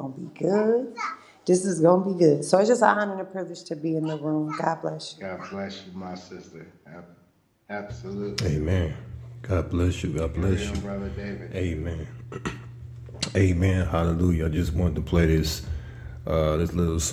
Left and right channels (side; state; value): both; identical; correlation 1.00